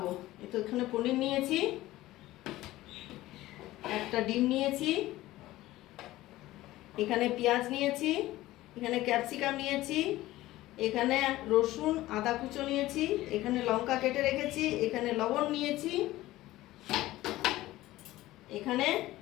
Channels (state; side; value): quieter; right; 16.6 dB